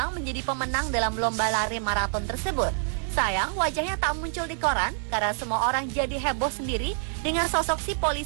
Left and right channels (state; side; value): silent; left; digital silence